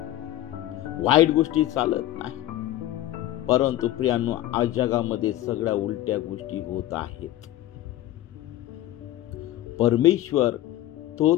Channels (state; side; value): quieter; right; 14.2 dB